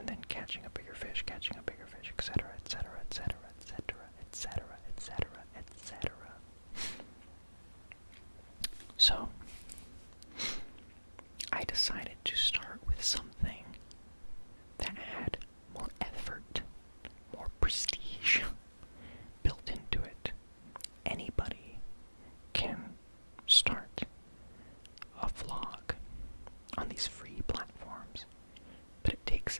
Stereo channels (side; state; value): both; inverted; correlation -1.00